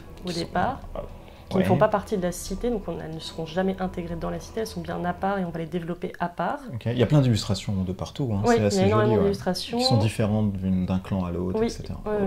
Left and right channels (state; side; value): identical; both; correlation 1.00